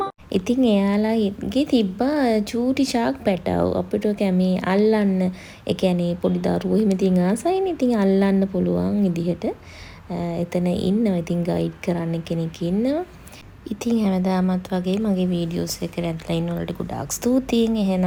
ඉතින් එයාලාගේ තිබ්බා චූටි ෂාක් පැටව් අපිට කැමේ අල්ලන්න. ඒ කියන්නේ පොඩි දරුවෝ එහෙම ඉතින් ආසයිනේ. ඉතින් අල්ලන්න පුළුවන් විදිහට එතන ඉන්නවා. ඉතින් ගයිඩ් කරන්න කෙනෙක් ඉන්නවා. ඉතින් හැමදාමත් වගේ මගේ වීඩියෝස් එකට ඇදලා ඉන්න වලට ගොඩාක් ස්තුතියි.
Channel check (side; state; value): both; identical; correlation 1.00